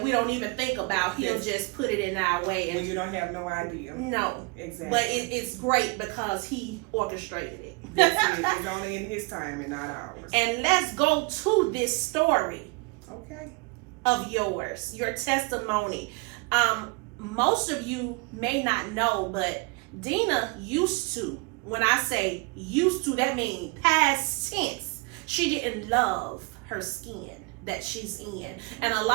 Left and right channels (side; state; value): left; quieter; 28.0 dB